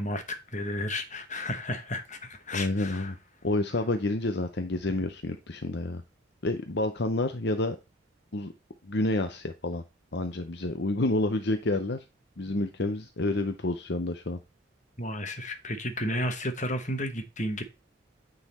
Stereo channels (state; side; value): normal; both; correlation 0.42